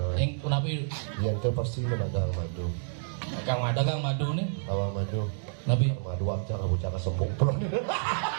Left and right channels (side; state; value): left; silent; digital silence